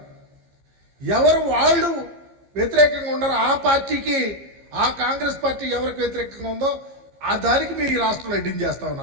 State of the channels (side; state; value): left; late; 15 ms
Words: ఎవరు వాళ్ళు వ్యతిరేకంగా ఉన్నారో ఆ పార్టీకి, ఆ కాంగ్రెస్ పార్టీ ఎవరికి వ్యతిరేకంగా ఉందో ఆ దానికి మీరు ఈ రాష్ట్రంలో ఎడ్డింగ్ చేస్తా